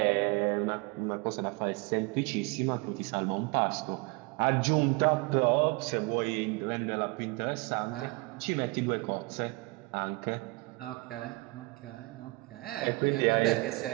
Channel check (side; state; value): left; quieter; 25.1 dB